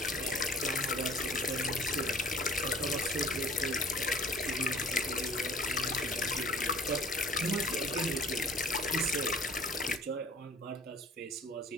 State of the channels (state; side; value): normal; both; correlation 0.51